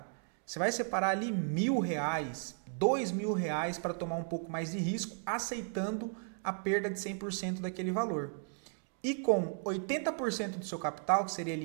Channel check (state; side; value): silent; left; 54 dB below the other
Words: você vai separar ali R$1.000, R$2.000 para tomar um pouco mais de risco, aceitando a perda de 100% daquele valor. E com 80% do seu capital, que seria